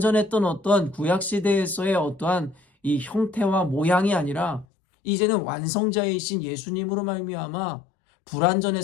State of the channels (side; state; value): right; drops out; at 4.7 s